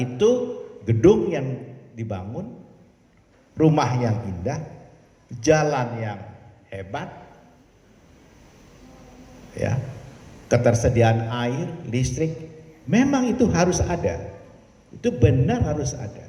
gedung yang dibangun, rumah yang indah, jalan yang hebat, ya, ketersediaan air, listrik, memang itu harus ada. Itu benar harus ada.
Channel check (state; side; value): identical; both; correlation 1.00